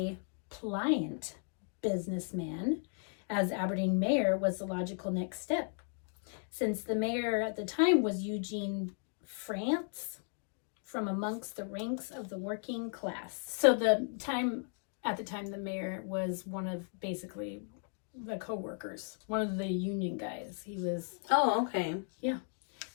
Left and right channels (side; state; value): right; silent; 54 dB below the other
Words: pliant businessman as Aberdeen mayor was the logical next step. Since the mayor at the time was Eugene France, from amongst the ranks of the working class. So at the time the mayor was one of basically the co-workers, one of the union guys. He was... Oh, okay. Yeah.